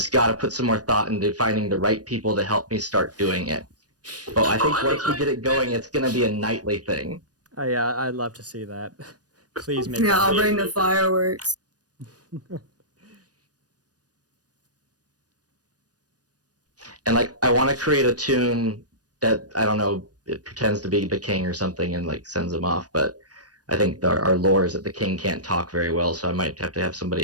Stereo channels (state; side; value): late; left; 0.68 ms